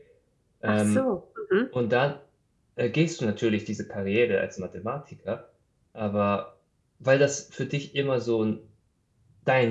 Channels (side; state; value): both; identical; correlation 1.00